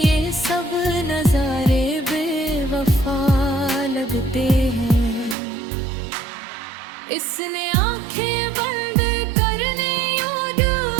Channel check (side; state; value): left; drops out; at 5.4 s